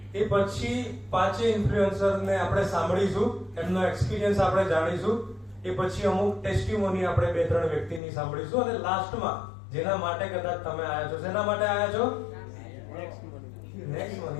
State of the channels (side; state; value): right; drops out; at 8.0 s